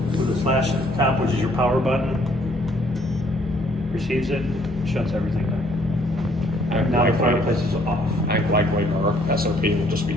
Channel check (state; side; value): normal; both; correlation 0.64